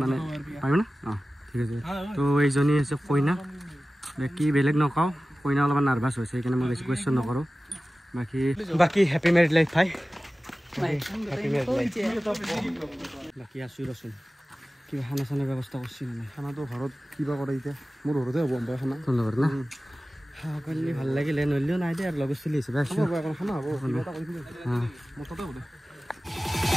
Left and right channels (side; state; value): both; normal; correlation 0.96